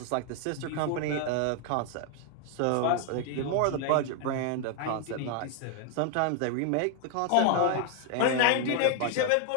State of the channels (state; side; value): different; both; correlation 0.00